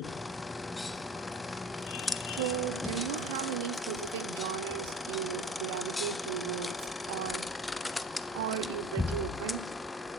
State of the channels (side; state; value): both; normal; correlation 0.42